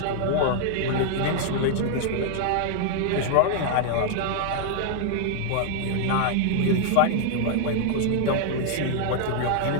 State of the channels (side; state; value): both; different; correlation -0.01